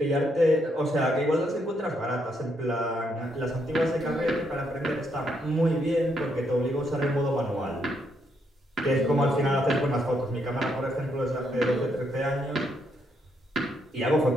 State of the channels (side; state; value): both; normal; correlation 0.76